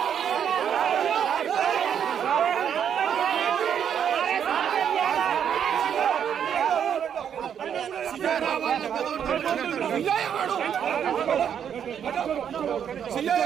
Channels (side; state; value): left; quieter; 8.5 dB